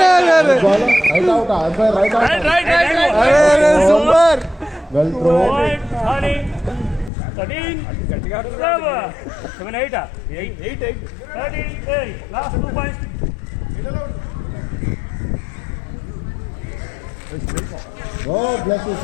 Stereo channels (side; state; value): right; drops out; at 7.1 s